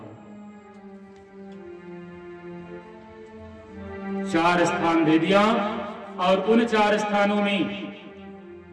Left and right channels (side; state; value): both; identical; correlation 1.00